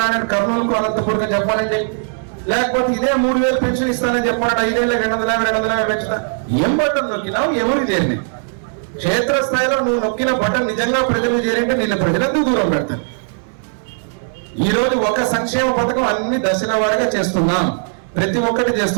రానని కర్నూలుకు, అనంతపురం చెప్పాలండి. లేకపోతే ఇదే 3,000 పెన్షన్ ఇస్తానని చెప్పాలంటే 5 ఏళ్ళకి 250 పెంచుతా. ఏం బటన్ నొక్కినావు? ఎవరికి చేరింది? క్షేత్రస్థాయిలో నువ్వు నొక్కిన బటన్ నిజంగా ప్రజలకు చేరింటే నిన్ను ప్రజలందరూ దూరం పెడతారు. ఈ రోజు ఒక సంక్షేమ పథకం అన్ని దశల వారీగా చేస్తున్నాం, ప్రతి ఒక్కటి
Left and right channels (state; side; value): silent; left; 65 dB below the other